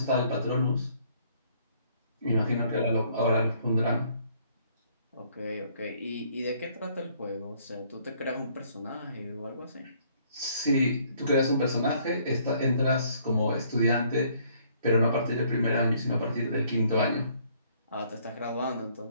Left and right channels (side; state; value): both; inverted; correlation -0.63